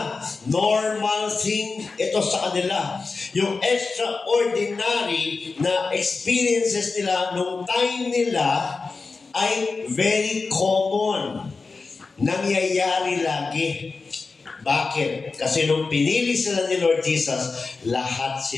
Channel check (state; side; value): quieter; right; 4.2 dB